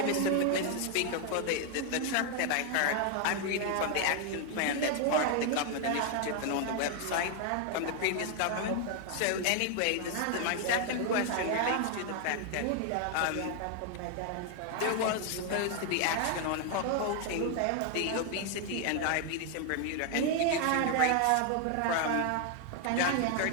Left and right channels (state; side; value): different; both; correlation 0.00